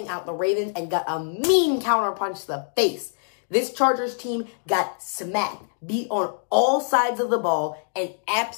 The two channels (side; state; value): right; silent; digital silence